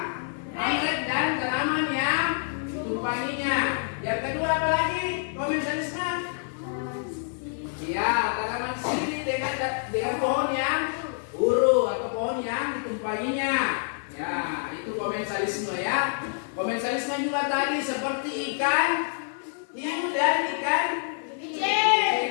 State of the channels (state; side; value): silent; right; digital silence